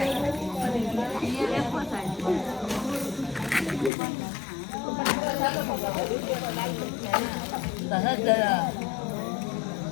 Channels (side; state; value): right; drops out; at 3.9 s